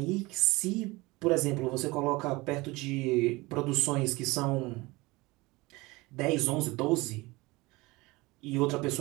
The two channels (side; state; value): left; quieter; 22.5 dB